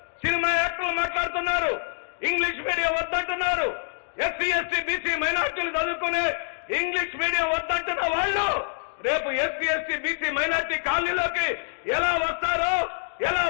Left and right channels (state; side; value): silent; right; digital silence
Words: సినిమా యాక్టర్లు మాట్లాడుతున్నారు, ఇంగ్లీష్ మీడియం వద్దంటున్నారు, ఎస్సీ ఎస్టీ బీసీ మైనార్టీలు చదువుకునే ఇంగ్లీష్ మీడియం వద్దంటున్న వాళ్ళు రేపు ఎస్సీ ఎస్టీ బీసీ మైనార్టీ కాలనీలోకి ఎలా వస్తారో, ఎలా